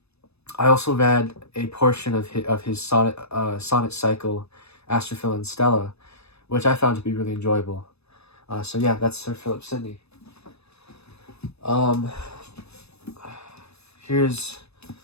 also read a portion of his sonnet cycle, Astrophil and Stella, which I found to be really enjoyable. So yeah, that's Sir Philip Sidney. Here's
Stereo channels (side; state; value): right; late; 0.79 ms